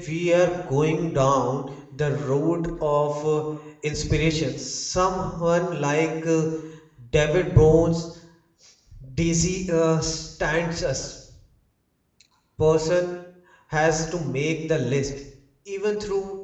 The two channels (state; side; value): identical; both; correlation 1.00